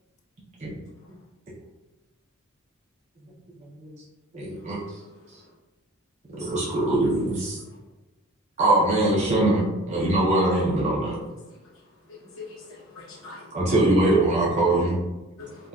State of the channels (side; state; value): both; normal; correlation 0.45